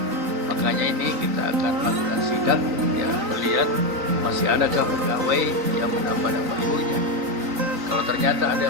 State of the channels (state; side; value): late; left; 3.9 ms